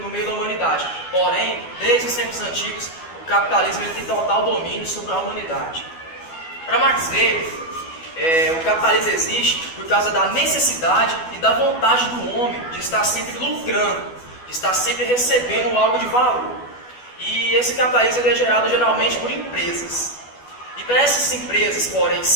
meio da humanidade. Porém, desde os tempos antigos, o capitalismo ele tem total domínio sobre a humanidade. Para Max Weber, o capitalismo existe por causa da necessidade e da vontade do homem de estar sempre lucrando, de estar sempre recebendo algo de valor. E esse capitalismo é gerado geralmente por empresas. E para essas empresas, porém,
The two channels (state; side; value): late; right; 12 ms